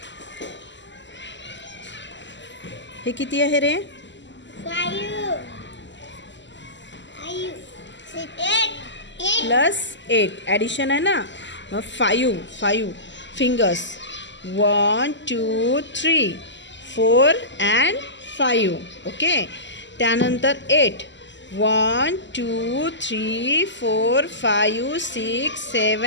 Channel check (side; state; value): right; late; 0.53 ms